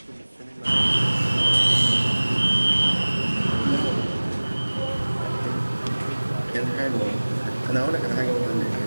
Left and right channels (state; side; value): inverted; both; correlation -1.00